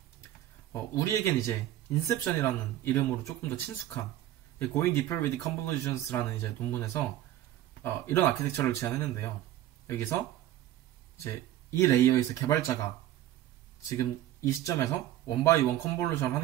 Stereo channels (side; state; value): left; quieter; 13.3 dB